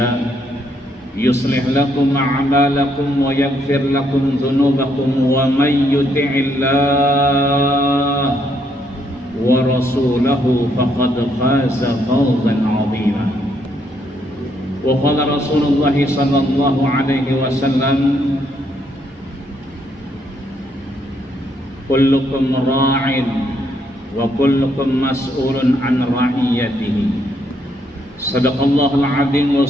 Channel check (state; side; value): normal; both; correlation 0.73